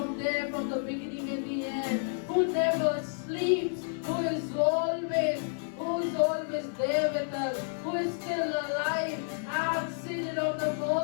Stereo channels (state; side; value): silent; right; 58 dB below the other